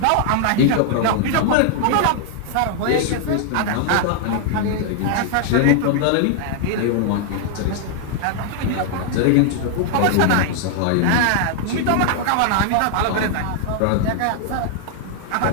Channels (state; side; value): different; both; correlation 0.00